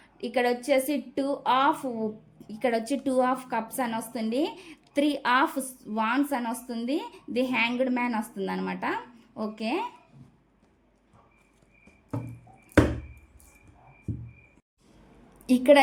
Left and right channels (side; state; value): both; identical; correlation 1.00